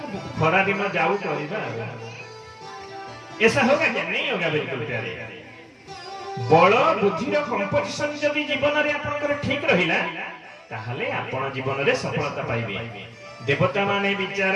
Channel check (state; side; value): identical; both; correlation 1.00